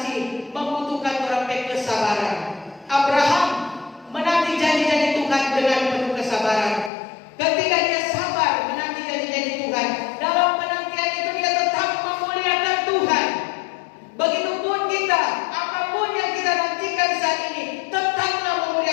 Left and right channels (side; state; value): right; drops out; at 6.9 s